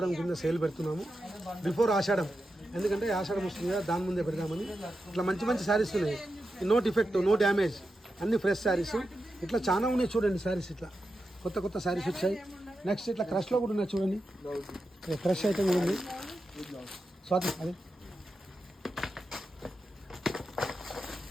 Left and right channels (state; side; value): normal; both; correlation 0.89